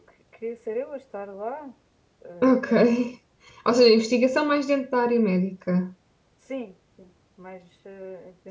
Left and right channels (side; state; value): both; identical; correlation 1.00